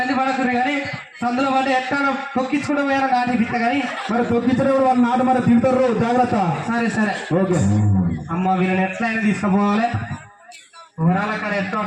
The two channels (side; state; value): both; identical; correlation 1.00